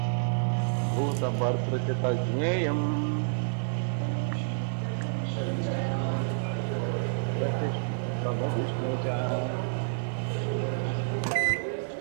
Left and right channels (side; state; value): left; silent; digital silence